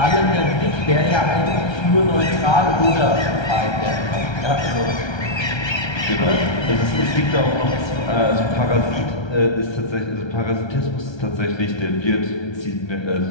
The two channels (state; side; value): late; right; 1.3 ms